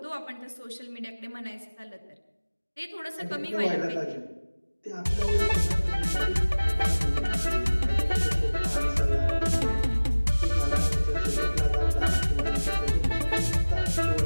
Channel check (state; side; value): inverted; both; correlation -1.00